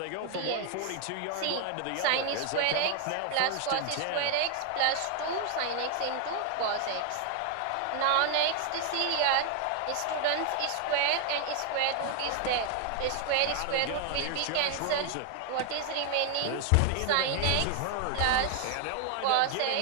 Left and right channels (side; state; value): both; different; correlation 0.00